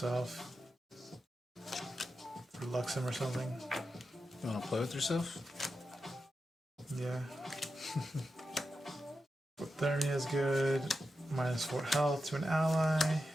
For Luxem or something. You want to play with yourself? Yeah. Thermia is good. -4 health to an ally.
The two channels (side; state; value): both; normal; correlation 0.89